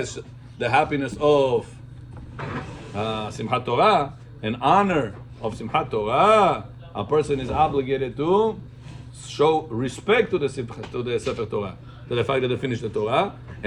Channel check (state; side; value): identical; both; correlation 1.00